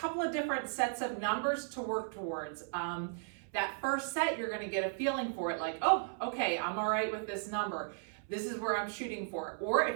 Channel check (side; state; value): left; silent; 54 dB below the other